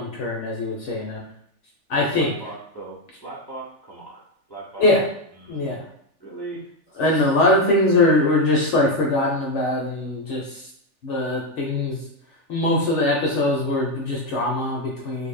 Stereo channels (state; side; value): late; right; 3.4 ms